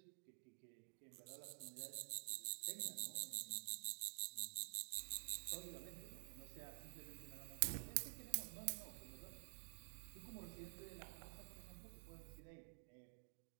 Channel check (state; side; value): silent; left; digital silence